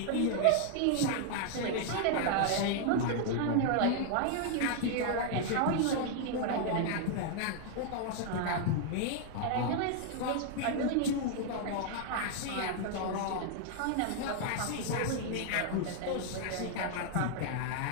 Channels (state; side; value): different; both; correlation 0.00